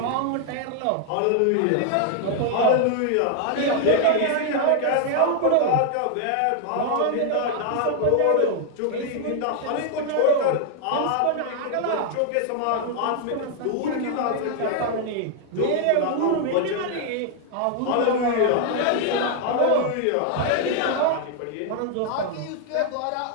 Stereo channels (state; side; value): different; both; correlation 0.00